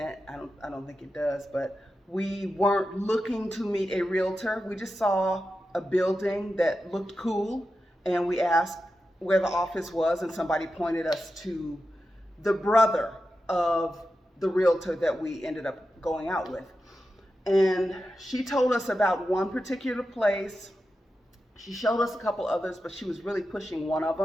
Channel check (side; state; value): both; normal; correlation 0.91